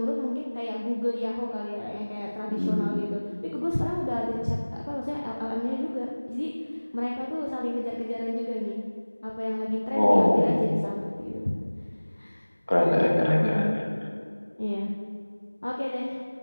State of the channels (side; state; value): both; inverted; correlation -1.00